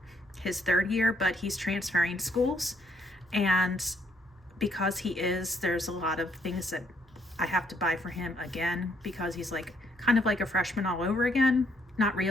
his 3rd year, but he's transferring schools. And because there's a lot of things that I have to buy for him again, because he's like kind of like a freshman all over again. Not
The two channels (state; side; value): normal; both; correlation 0.70